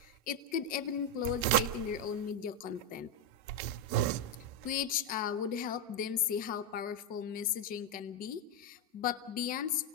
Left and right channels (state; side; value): normal; both; correlation 0.04